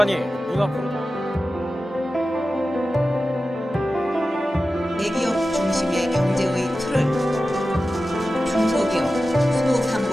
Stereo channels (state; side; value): normal; both; correlation 0.94